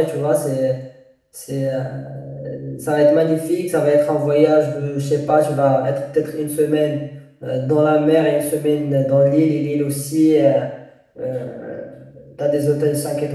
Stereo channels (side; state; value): both; identical; correlation 1.00